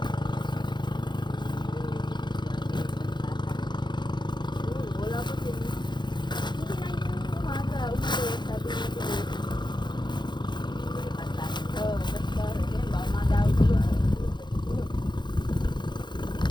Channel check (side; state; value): right; late; 0.22 ms